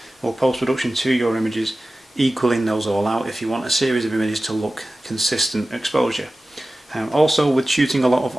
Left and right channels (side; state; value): both; normal; correlation 0.96